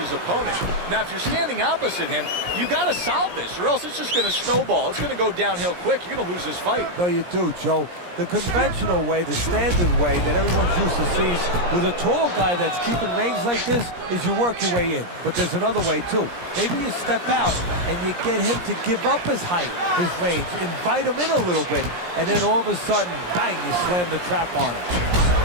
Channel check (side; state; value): left; late; 17 ms